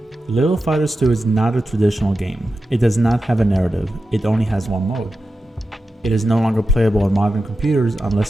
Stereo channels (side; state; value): both; normal; correlation 0.91